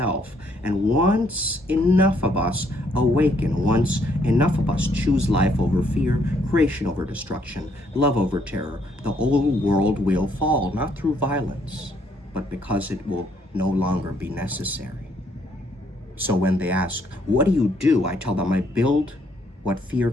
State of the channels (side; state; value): both; normal; correlation 0.69